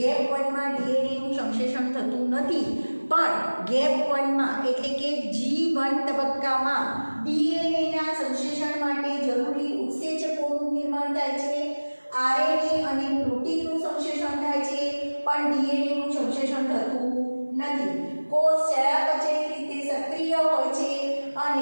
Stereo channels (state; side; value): inverted; both; correlation -1.00